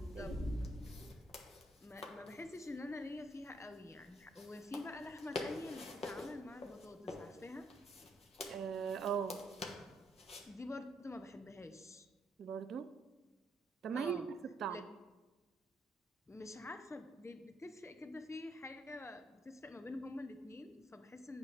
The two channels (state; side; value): normal; both; correlation 0.74